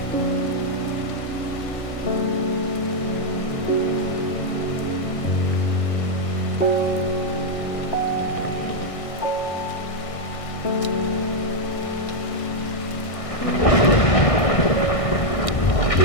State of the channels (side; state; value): right; late; 1.6 ms